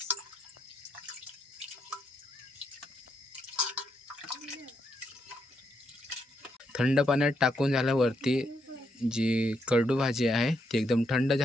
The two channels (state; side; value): normal; both; correlation 0.79